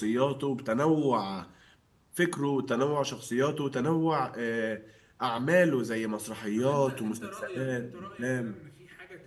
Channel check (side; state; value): both; identical; correlation 1.00